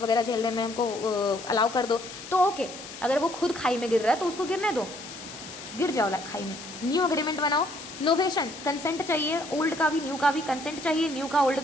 वगैरह झेलने में, हमको अलाउ कर दो, तो ओके. अगर वो खुद खाई में गिर रहा है तो उसको गिरने दो, गिर जाओ खाई में. न्यू अग्रीमेंट बनाओ. नोवेशन कंसेंट चाहिए, ओल्ड का भी न्यू का भी कंसेंट चाहिए, न्यू का ओल्ड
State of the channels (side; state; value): left; noise; hiss, 13 dB below the sound